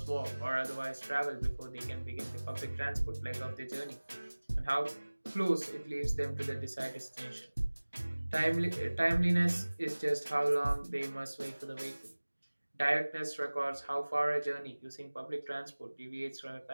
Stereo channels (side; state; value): both; inverted; correlation -1.00